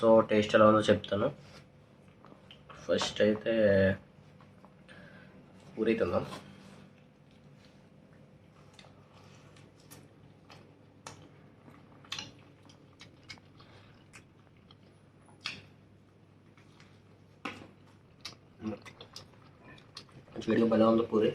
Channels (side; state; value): both; identical; correlation 1.00